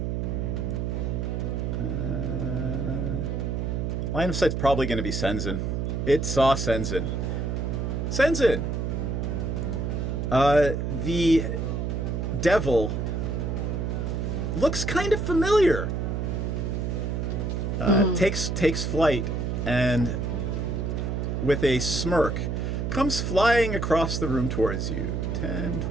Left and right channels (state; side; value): noise; right; hum, 1 dB below the sound